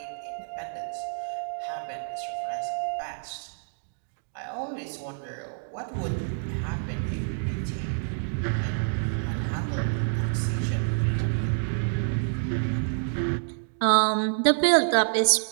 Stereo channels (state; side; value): silent; left; digital silence